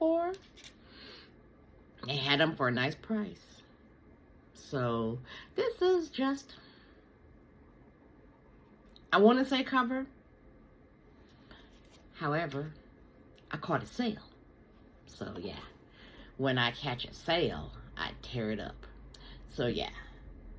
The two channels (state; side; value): identical; both; correlation 1.00